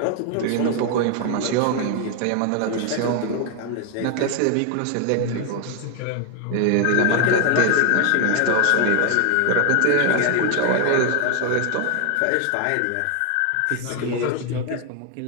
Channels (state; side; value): different; both; correlation 0.00